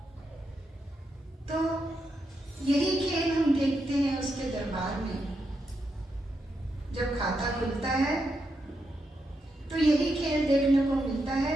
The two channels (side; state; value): both; normal; correlation 0.83